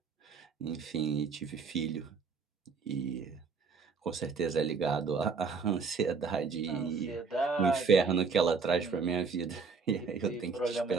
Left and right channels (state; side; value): quieter; left; 5.1 dB